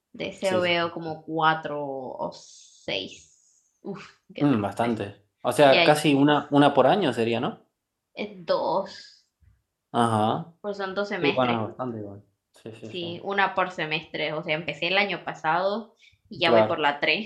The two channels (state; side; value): identical; both; correlation 1.00